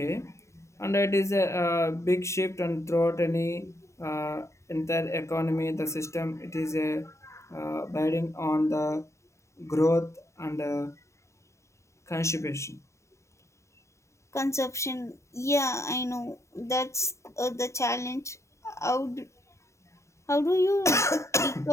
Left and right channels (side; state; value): right; late; 0.14 ms